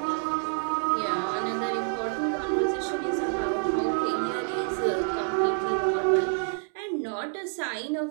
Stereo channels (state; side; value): silent; left; digital silence